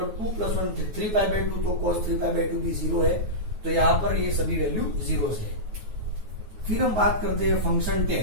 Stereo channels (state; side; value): late; left; 9.3 ms